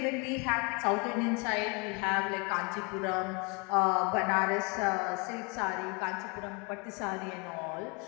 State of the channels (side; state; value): right; quieter; 31.3 dB